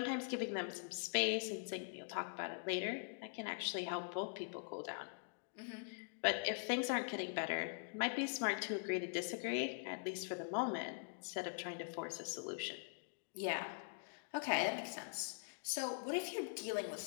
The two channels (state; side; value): silent; right; digital silence